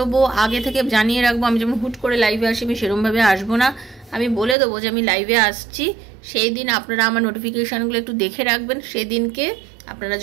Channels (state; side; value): drops out; left; at 4.5 s